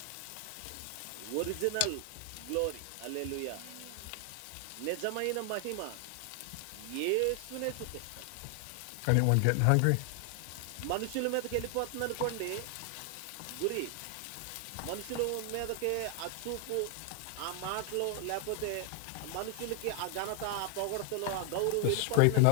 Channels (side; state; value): both; different; correlation 0.00